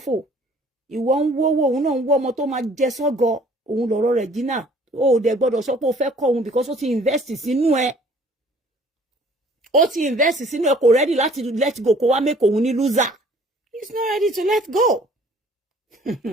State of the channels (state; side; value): normal; both; correlation 0.55